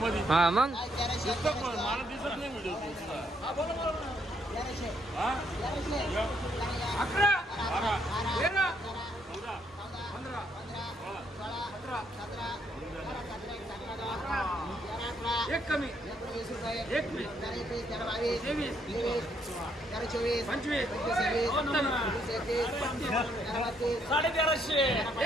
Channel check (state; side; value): normal; both; correlation 0.72